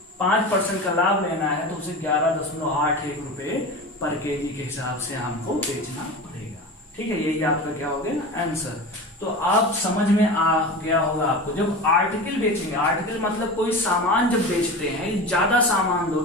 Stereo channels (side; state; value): both; normal; correlation 0.30